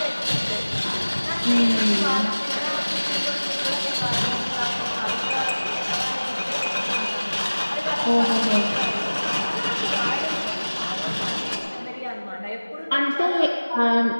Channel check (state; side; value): inverted; both; correlation -1.00